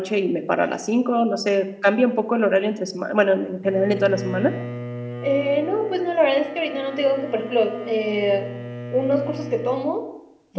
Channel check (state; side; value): identical; both; correlation 1.00